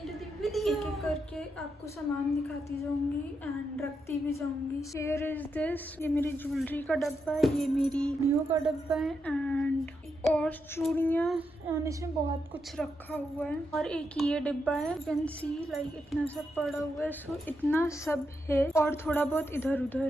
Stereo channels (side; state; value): both; normal; correlation 0.83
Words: the video. एक एक करके आपको सामान दिखाती जाऊंगी एंड रखती भी जाऊंगी. Here is this. ये मेरी ज्वेलरी का डब्बा है, ये मेरी नियो का डब्बा है एंड और चूड़ियाँ और इसमें बहुत कुछ रखा हुआ है. और एक ये डिब्बा है, you can see like इतना सब पड़ा हुआ है. So इतना सब है और थोड़ा बहुत इधर